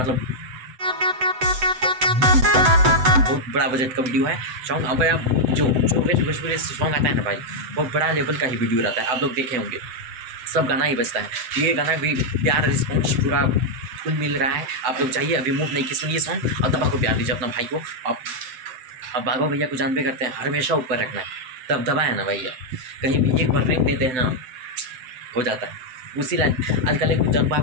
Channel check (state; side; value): late; left; 7.9 ms